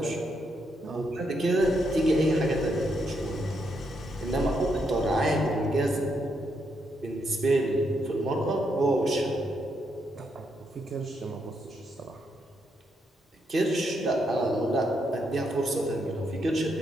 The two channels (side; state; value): both; normal; correlation 0.79